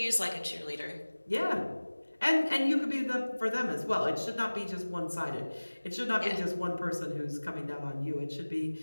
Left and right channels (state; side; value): inverted; both; correlation -1.00